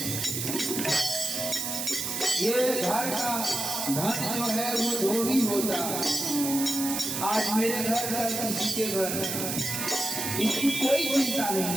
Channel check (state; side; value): noise; right; hiss, 2 dB below the sound